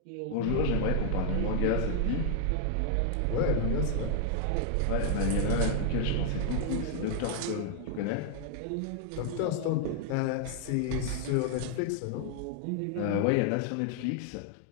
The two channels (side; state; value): both; different; correlation 0.00